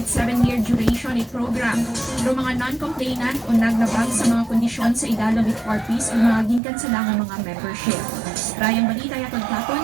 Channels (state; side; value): drops out; left; at 6.6 s